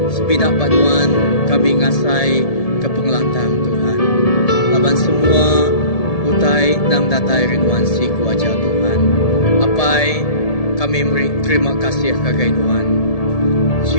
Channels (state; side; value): late; right; 1.7 ms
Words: Sebinak banuan kami ngasai ke pengelantang Tuhan. Laban semua utai nang datai rinuan si kuaja Tuhan. Apai kami terima kasih kagai Nuan.